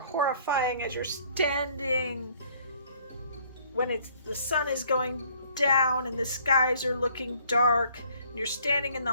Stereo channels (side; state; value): both; inverted; correlation -0.60